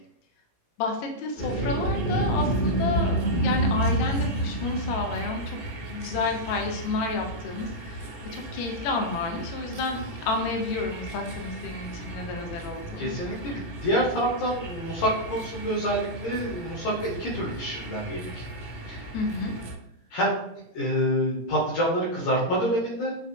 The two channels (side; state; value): right; late; 17 ms